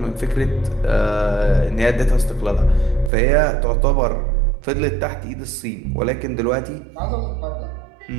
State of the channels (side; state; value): left; drops out; at 3.1 s